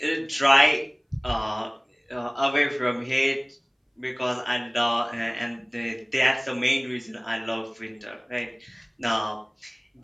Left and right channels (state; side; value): identical; both; correlation 1.00